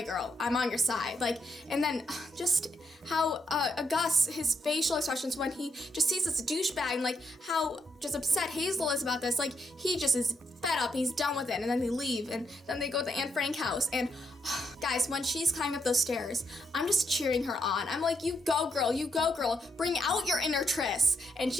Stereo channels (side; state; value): both; normal; correlation 0.79